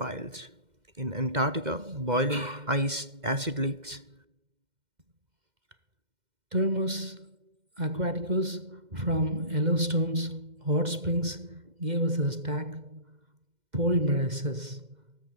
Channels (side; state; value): left; late; 2.1 ms